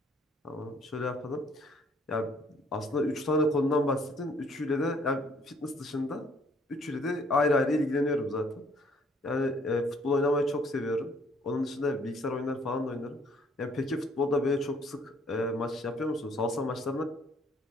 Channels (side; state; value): both; normal; correlation 0.62